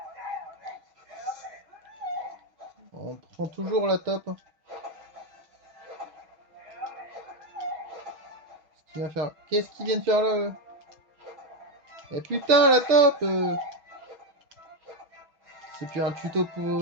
On prend toujours la top. Qu'est-ce qu'il vient de faire là? Eh putain, la top C'est plus un tuto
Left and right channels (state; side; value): late; left; 6.2 ms